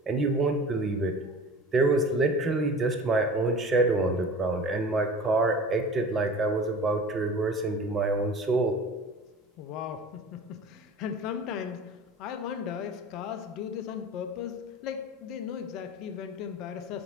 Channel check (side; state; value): both; normal; correlation 0.40